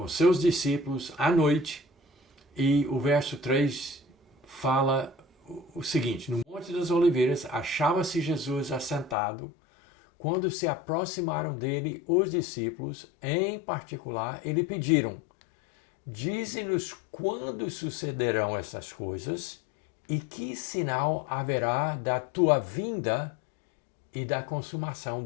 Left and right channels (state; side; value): drops out; right; at 9.2 s